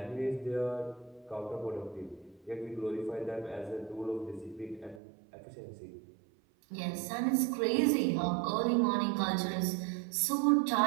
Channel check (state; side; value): drops out; left; at 5.0 s